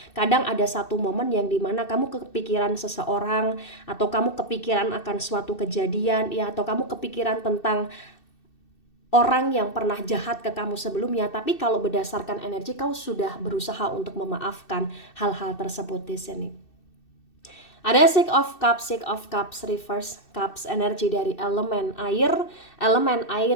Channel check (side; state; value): right; late; 2.6 ms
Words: Kadang ada satu momen yang dimana kamu kepikiran seseorang, atau kamu kepikiran akan suatu kejadian ya, atau kamu kepikiran tentang orang yang pernah jahat ke kamu sebelumnya, tapi kalau berdasarkan energi kau sudah berusaha untuk memaafkan hal-hal tersebut di sini. Ada Six of Cups reverse, Cups energi dari elemen air